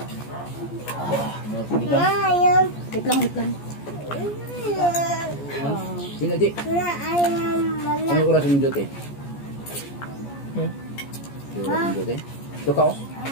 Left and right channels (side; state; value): right; late; 14 ms